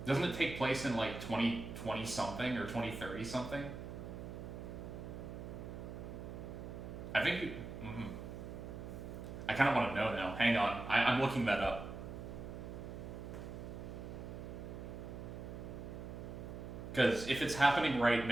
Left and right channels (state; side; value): noise; right; hum, 8 dB below the sound